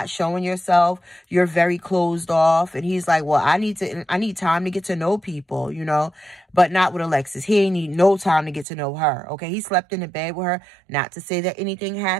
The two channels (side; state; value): left; drops out; at 8.7 s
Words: showing yourself. You're very closed off. And he's like, well, I need time to get to know people, but not with Alexis. He ain't need no time to get to know her. Okay, he slept in the bed with her. Not to say that anything